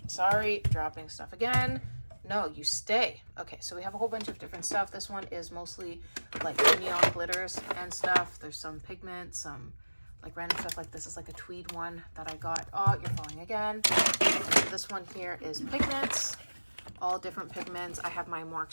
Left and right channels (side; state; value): both; inverted; correlation -1.00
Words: sorry, dropping stuff again. No, you stay. Okay, so we have a whole bunch of different stuff. This one is mostly like neon glitters and stuff. There's some pigments, some like random stuff. Like this is like a tweed one that I got. Oh, you're falling again. This one here is pigments, all different pigments. I have my more